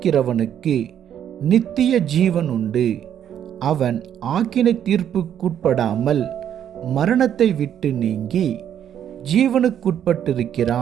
நித்திய ஜீவன் உண்டு, அவன் ஆக்கினை தீர்ப்புக்குட்படாமல் மரணத்தை விட்டு நீங்கி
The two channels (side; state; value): left; quieter; 9.7 dB